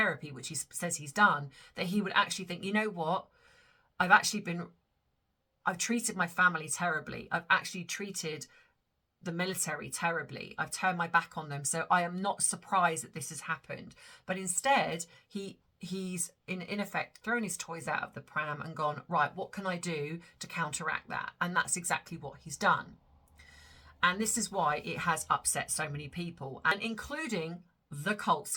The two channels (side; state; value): both; identical; correlation 1.00